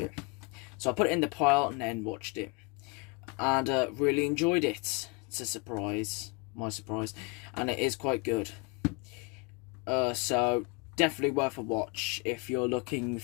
so I put it in the pile and then watched it, and really enjoyed it. It's a surprise, my surprise, and it is quite good. So definitely worth a watch if you're looking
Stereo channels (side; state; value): right; quieter; 30.0 dB